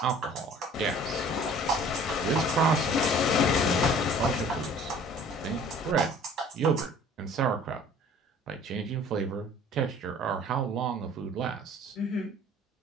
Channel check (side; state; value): both; normal; correlation 0.50